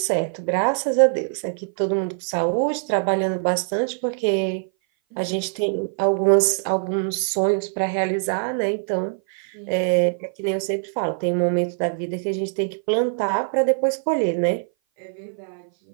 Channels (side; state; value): left; silent; 58 dB below the other